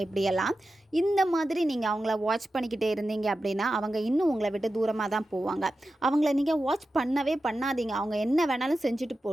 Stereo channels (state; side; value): normal; both; correlation 0.92